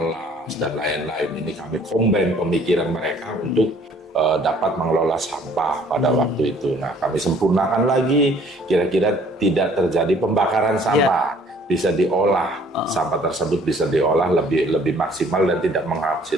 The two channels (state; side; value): normal; both; correlation 0.57